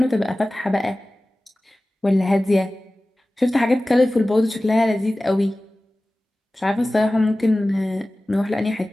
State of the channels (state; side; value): normal; both; correlation 0.97